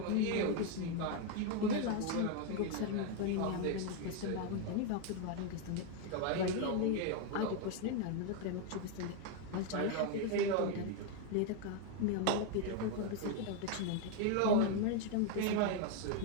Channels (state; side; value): different; both; correlation 0.01